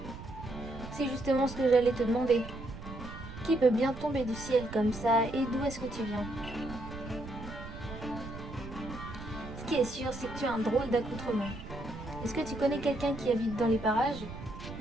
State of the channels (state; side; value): noise; right; rumble, 11 dB below the sound